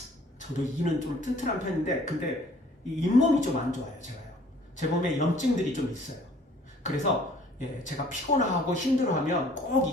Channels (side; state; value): both; normal; correlation 0.55